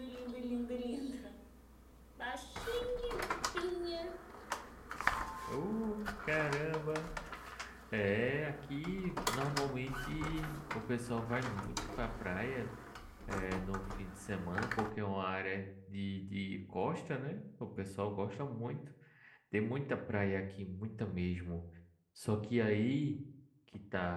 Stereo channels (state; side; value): identical; both; correlation 1.00